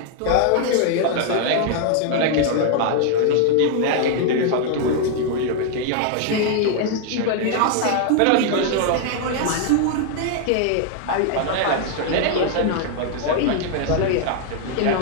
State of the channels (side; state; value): both; different; correlation 0.00